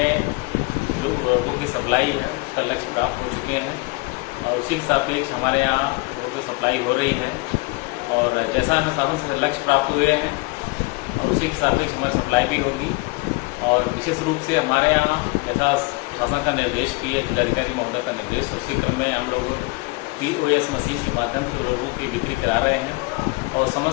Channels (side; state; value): right; quieter; 26.1 dB